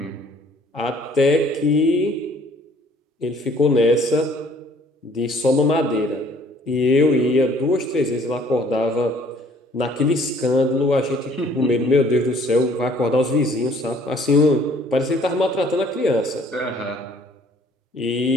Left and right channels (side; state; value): both; normal; correlation 0.58